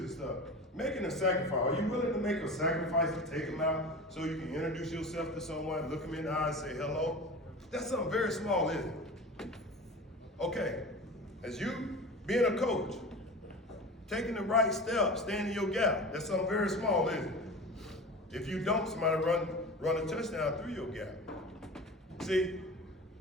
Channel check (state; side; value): normal; both; correlation 0.33